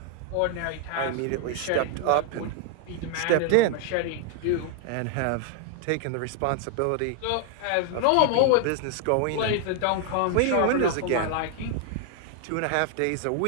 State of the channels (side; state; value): both; different; correlation 0.00